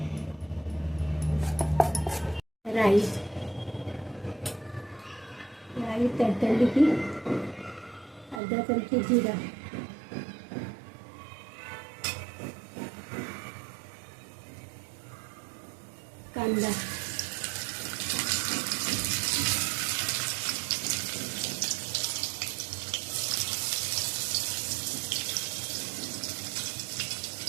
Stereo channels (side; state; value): left; drops out; at 8.4 s